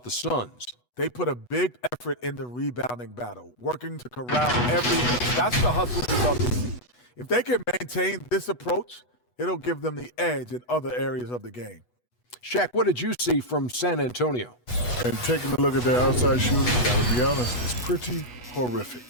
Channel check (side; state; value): right; late; 8.2 ms